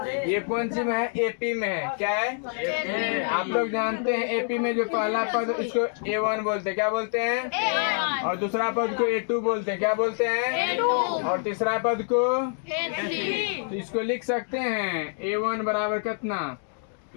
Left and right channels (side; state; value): right; silent; 61 dB below the other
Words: ये कौन सी में है, एपी में है। क्या है, आप लोग जानते हैं एपी में जो पहला पद इसको A1 बोलते हैं। क्या बोलते हैं? और दूसरा पद को A2 बोलते हैं। क्या बोलते हैं? और तीसरा पद को A3। तो इसको लिख सकते हैं A1 बराबर कितना,